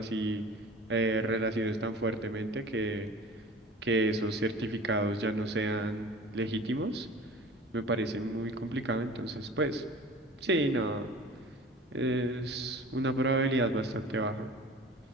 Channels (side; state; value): both; normal; correlation 0.41